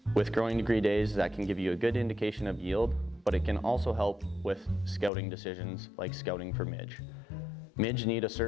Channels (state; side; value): drops out; right; at 5.1 s